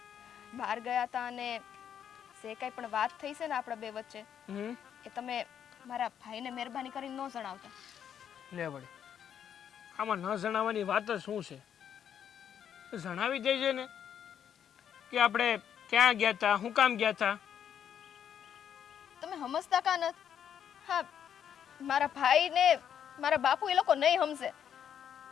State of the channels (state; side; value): quieter; right; 8.9 dB